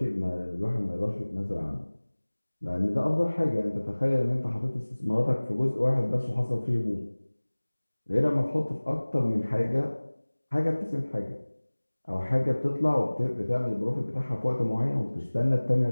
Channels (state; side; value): inverted; both; correlation -1.00